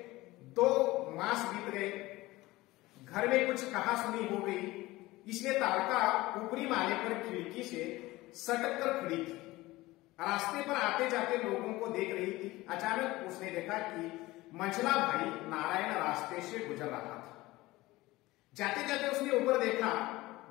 2 मास बीत गए। घर में कुछ कहा सुनी हो गई, इसलिए तारका ऊपरी माले पर खिड़की से सटक कर खड़ी थी। रास्ते पर आते जाते लोगों को देख रही थी। अचानक उसने देखा कि मंझला भाई नारायण रास्ते से गुजर रहा था। जाते जाते उसने ऊपर देखा,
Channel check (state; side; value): quieter; right; 19.2 dB